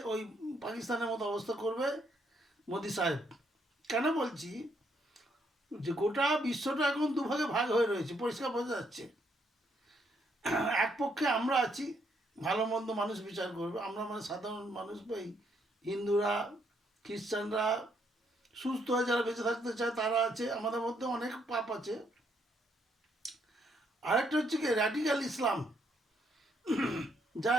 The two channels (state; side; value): normal; both; correlation 0.73